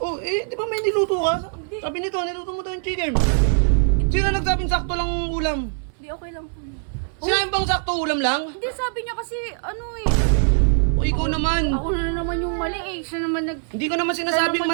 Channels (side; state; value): left; silent; 64 dB below the other